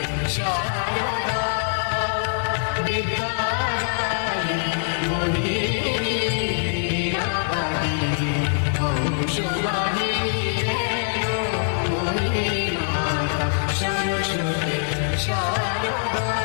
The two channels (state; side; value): silent; right; digital silence